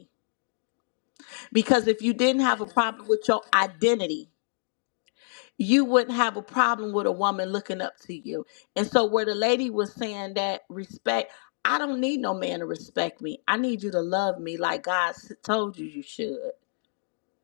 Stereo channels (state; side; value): silent; right; digital silence